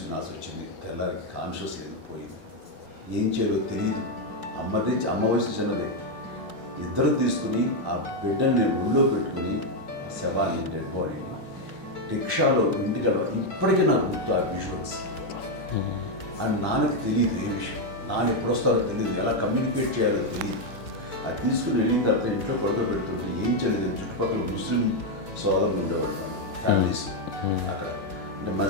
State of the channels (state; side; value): late; right; 3.9 ms